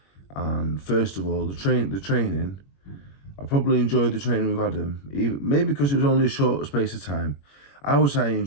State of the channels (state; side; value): late; right; 21 ms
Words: And first of all, the training. I probably enjoyed the training with Adam, maybe because it was only a short space of time. I would say I